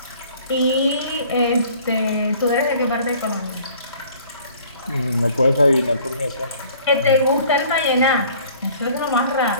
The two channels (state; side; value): inverted; both; correlation -0.53